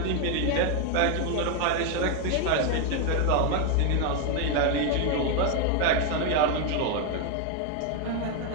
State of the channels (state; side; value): different; both; correlation 0.01